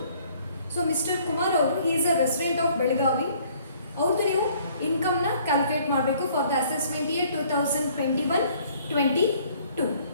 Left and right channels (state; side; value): inverted; both; correlation -0.59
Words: So Mr. Kumar ಅವರು he is a resident of Belgavi. ಅವ್ರದ್ದು ನೀವು ಇನ್ಕಮ್ನ ಕ್ಯಾಲ್ಕುಲೇಟ್ ಮಾಡಬೇಕು for the assessment year 2021-22.